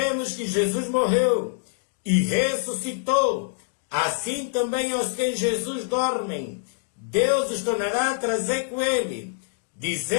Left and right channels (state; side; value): silent; right; digital silence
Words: que Jesus morreu e ressuscitou, assim também aos que em Jesus dormem, Deus os tornará a trazer com ele.